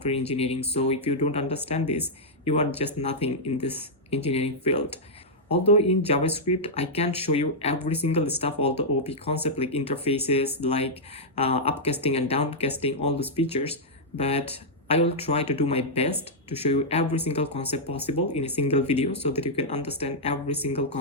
engineering. So if you don't understand this, you are just nothing in this engineering field. Although in JavaScript I can't show you every single stuff, all the OP concept like interfaces, like upcasting and downcasting, all those features, but I will try to do my best to show you every single concept possible in a single video so that you can understand every single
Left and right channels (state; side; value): normal; both; correlation -0.07